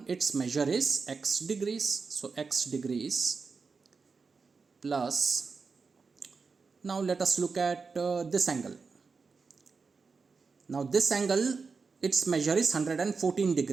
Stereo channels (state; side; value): quieter; left; 4.8 dB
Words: its measure is x degrees. So x degrees plus, now let us look at this angle. Now this angle, its measure is 114